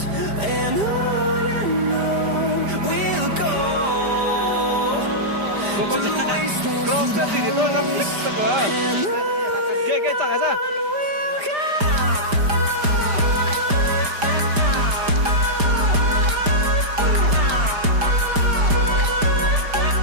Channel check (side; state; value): left; late; 5.0 ms